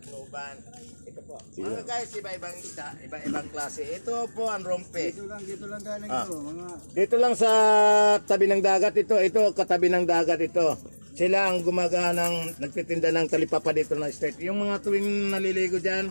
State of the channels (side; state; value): both; inverted; correlation -1.00